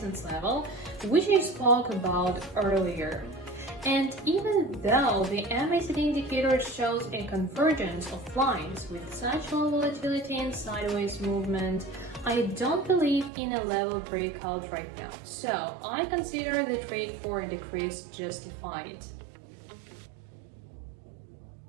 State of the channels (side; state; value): left; drops out; at 13.3 s